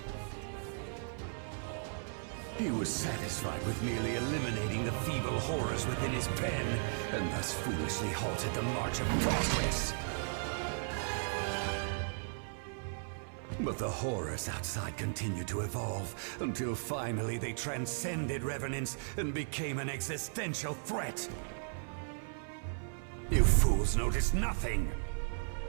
He was satisfied with merely eliminating the feeble horrors within his pen, and thus foolishly halted the march of progress. But the horrors outside continued to evolve, until finally they transcended revenants and became an existential threat. You fools noticed nothing!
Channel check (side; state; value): left; silent; 54 dB below the other